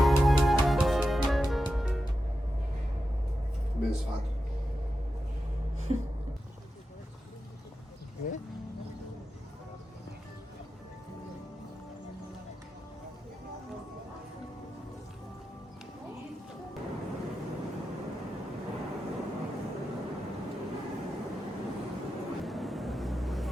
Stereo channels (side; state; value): both; normal; correlation 0.90